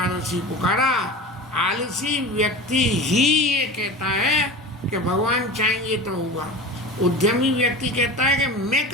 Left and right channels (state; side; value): normal; both; correlation 0.32